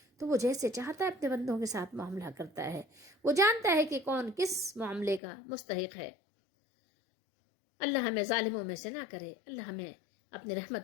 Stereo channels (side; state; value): right; drops out; at 5.2 s